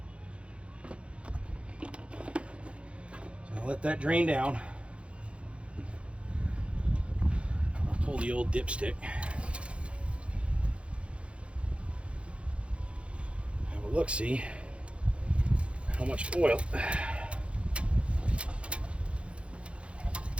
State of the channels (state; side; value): late; left; 0.060 ms